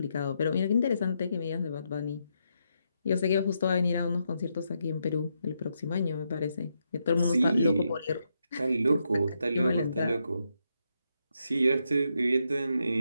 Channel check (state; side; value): inverted; both; correlation -0.81